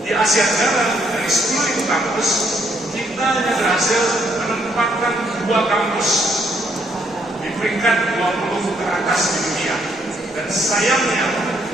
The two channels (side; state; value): both; normal; correlation 0.71